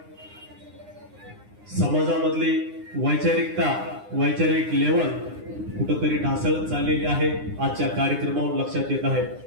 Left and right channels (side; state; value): left; late; 9.7 ms